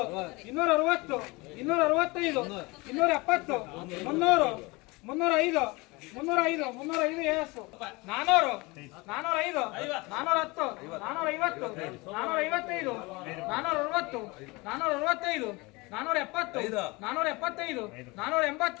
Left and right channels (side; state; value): right; quieter; 24.6 dB